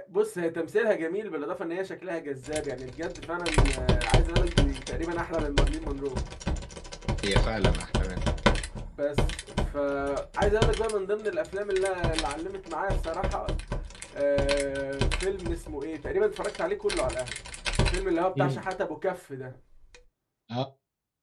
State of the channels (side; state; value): both; identical; correlation 1.00